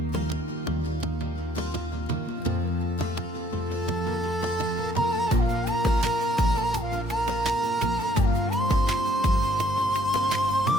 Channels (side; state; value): both; normal; correlation 0.63